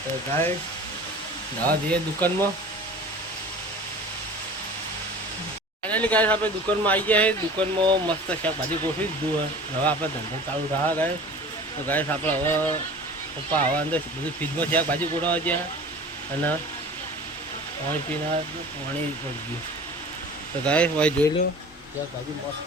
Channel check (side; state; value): both; normal; correlation 0.41